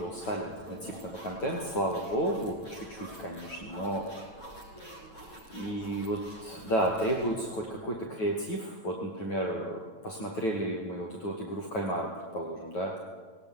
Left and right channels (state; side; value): late; right; 9.0 ms